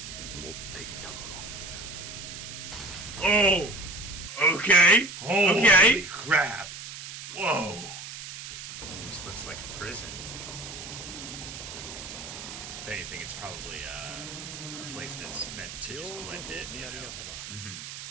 持っていたもの。Oh! Okay. Okay. Crap. Whoa. This looks like a prison. If anything, it's probably a place that's meant to just blend in, you know.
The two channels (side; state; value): right; noise; hiss, 10 dB below the sound